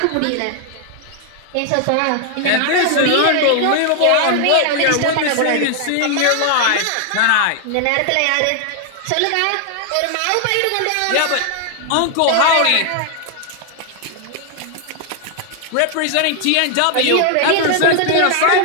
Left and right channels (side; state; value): both; different; correlation 0.00